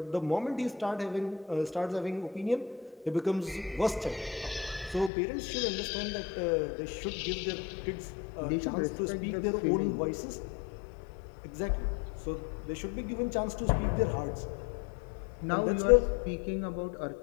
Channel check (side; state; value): right; drops out; at 5.1 s